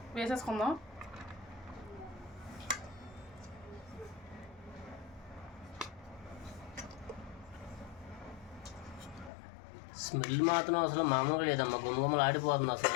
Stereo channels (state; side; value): drops out; right; at 9.3 s